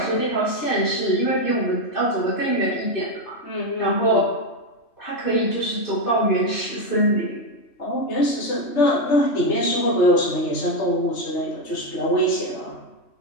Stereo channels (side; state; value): right; late; 3.4 ms